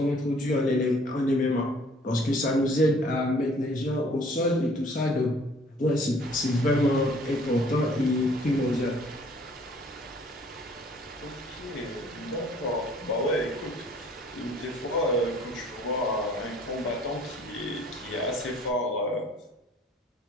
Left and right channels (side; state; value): both; normal; correlation 0.56